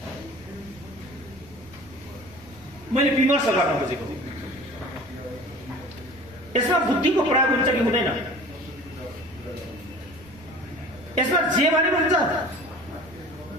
मैले विमर्श गर्न खोजेको। यसमा बुद्धिको प्रयोग हुन्छ कि हुँदैन? यसमा जे भने हुन्छ,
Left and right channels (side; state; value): right; noise; rumble, 22 dB below the sound